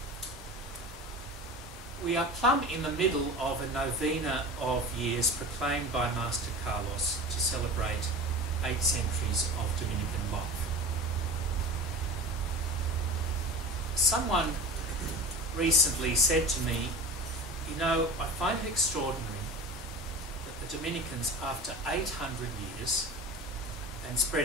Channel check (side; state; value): both; normal; correlation 0.33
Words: We are plumb in the middle of a novena of years proclaimed by Master Carlos to celebrate 8 centuries of Dominican life. Someone recently said to me, you know, I find it extraordinary that the Dominicans, after 800 years and